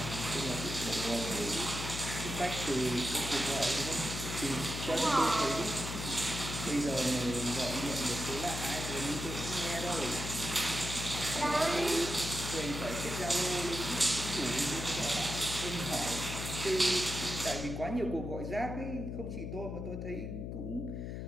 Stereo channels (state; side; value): noise; left; hum, 5 dB below the sound